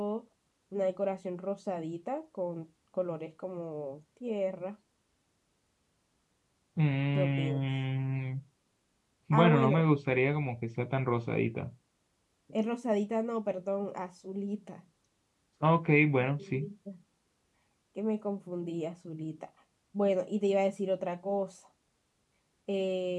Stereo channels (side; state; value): both; identical; correlation 1.00